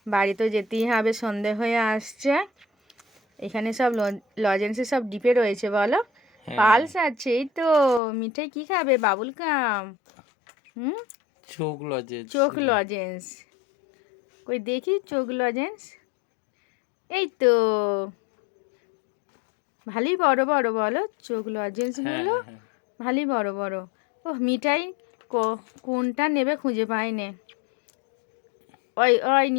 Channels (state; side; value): drops out; right; at 8.0 s